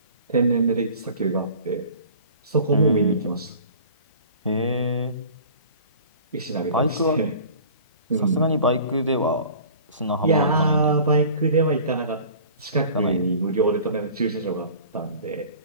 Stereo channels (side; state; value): both; inverted; correlation -0.45